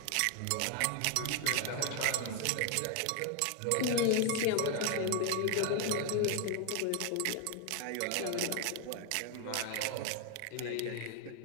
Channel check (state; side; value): different; both; correlation 0.01